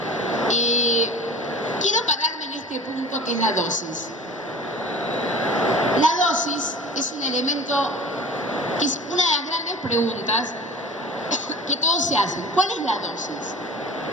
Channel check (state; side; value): normal; both; correlation 0.39